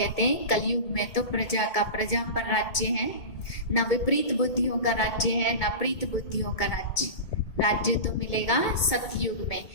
हैं कलयुग में तो प्रजा पर राज्य है, ना विपरीत बुद्धियों का राज्य है, ना प्रीत बुद्धियों का राज्य तो मिलेगा सतयुग में।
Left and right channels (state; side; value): late; right; 2.2 ms